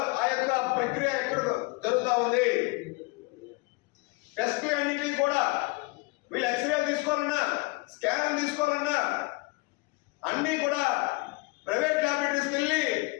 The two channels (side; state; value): right; quieter; 26.3 dB